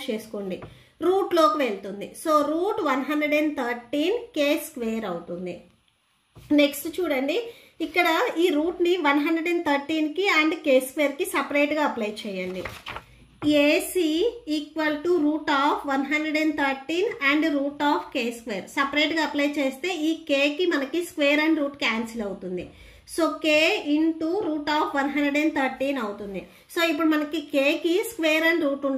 చేసుకోండి, రూట్లోకి వెళ్తుంది. సో రూట్ 113k స్క్వేర్ అవుతుంది. నెక్స్ట్ చూడండి, ఇక్కడ ఈ రూట్ని 113కి అండ్ k స్క్వేర్కి సపరేట్గా అప్లై చేయండి. AC equal to root of 113 and root of k square సపరేట్గా అప్లై చేస్తే ఈ kకి మనకి స్క్వేర్ అండ్ రూట్ క్యాన్సిల్ అవుతుంది. So k into root of 113 అవుతుంది. సో ఇప్పుడు మనకి kకి స్క్వేర్ అండ్ రూట్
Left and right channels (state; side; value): identical; both; correlation 1.00